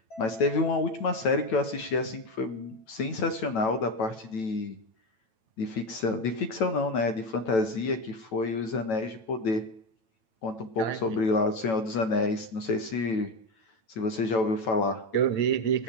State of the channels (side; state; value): right; late; 9.0 ms